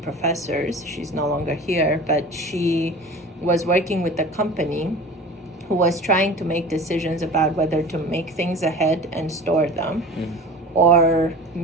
professors. She's no longer here, but she was working with a company who was trying to make decisions about whether to make things ahead and store them or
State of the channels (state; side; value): normal; both; correlation 0.38